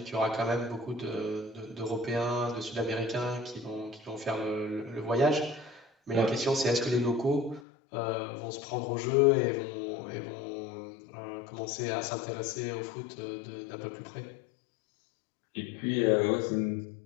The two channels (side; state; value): right; drops out; at 7.7 s